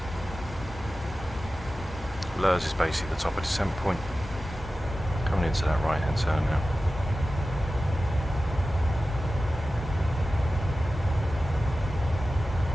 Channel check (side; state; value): both; normal; correlation 0.94